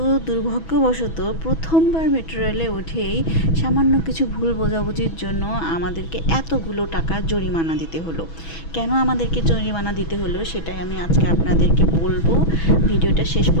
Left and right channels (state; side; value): late; right; 6.1 ms